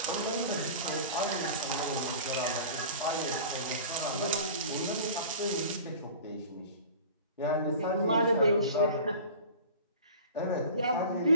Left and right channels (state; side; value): inverted; both; correlation -0.40